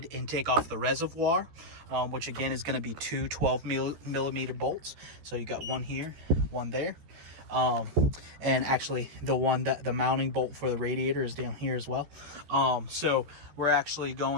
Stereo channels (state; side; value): late; left; 14 ms